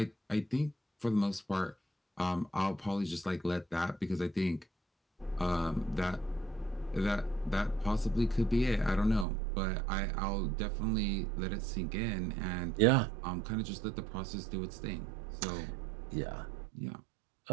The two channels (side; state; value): left; drops out; at 9.2 s